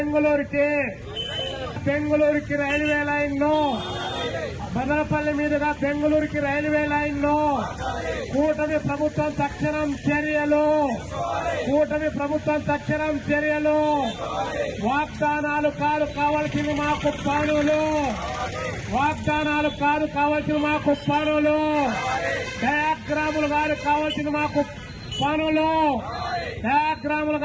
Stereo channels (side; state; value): both; identical; correlation 1.00